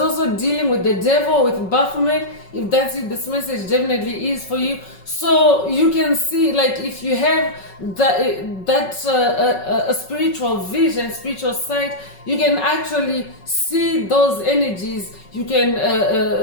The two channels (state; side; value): late; right; 5.4 ms